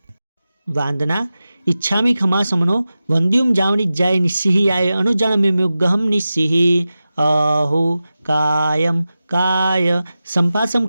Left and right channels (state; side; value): inverted; both; correlation -0.94